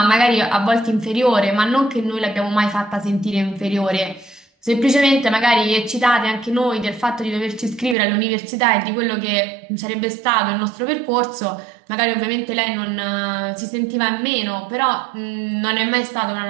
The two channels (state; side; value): drops out; left; at 8.0 s